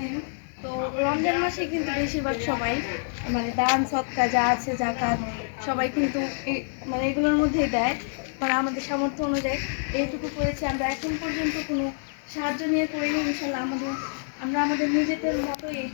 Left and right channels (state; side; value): silent; right; digital silence